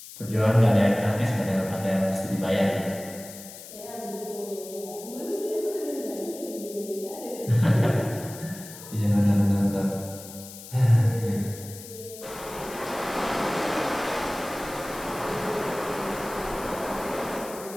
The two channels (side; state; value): left; noise; hiss, 15 dB below the sound